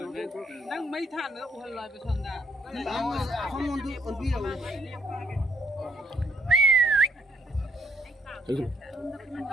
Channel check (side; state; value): both; normal; correlation 0.68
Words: Nang mấy than nữa udah lại besok dah. không muốn đi còn đi đâu